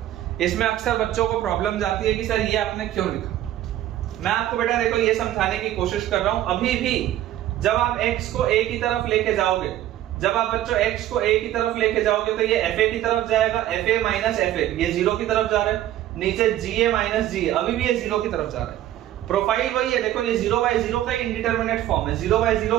इसमें अक्सर बच्चों को प्रॉब्लम जाती है कि सर ये आपने क्यों लिखा। मैं आपको बेटा देखो ये समझाने की कोशिश कर रहा हूं। अभी भी जब आप x को a की तरफ लेके जाओगे, जब आप बच्चों x को a की तरफ लेके जाओगे तो ये fa की तरफ जाएगा, fa माइनस fa ये 0 की तरफ जा रहा है, नीचे ga माइनस ga अभी भी ये 0 की तरफ जा रहा है। प्रोफाइल वही है, देखो ये 0/0 का इंडिटरमिनेट फॉर्म है,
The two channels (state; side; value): quieter; left; 13.1 dB